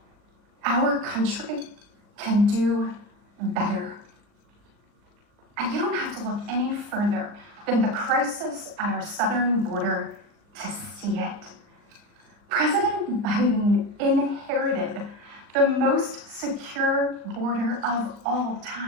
Our country can do better. And you don't have to look any further than the crisis at our southern border to see it. President Biden inherited the most secure border of all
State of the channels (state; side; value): late; left; 39 ms